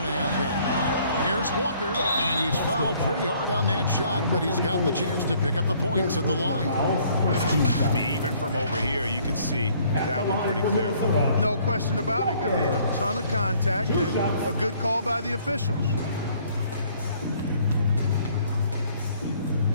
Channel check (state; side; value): inverted; both; correlation -0.61